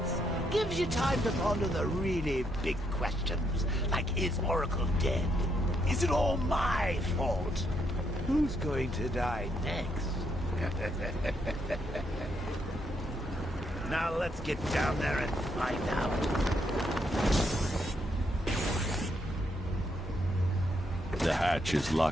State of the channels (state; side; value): normal; both; correlation 0.76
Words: Gives you time to ponder the really big questions, like is Oracle dead? Is it all my fault? Who's going to die next? Now let's get down there and find out. The hatch is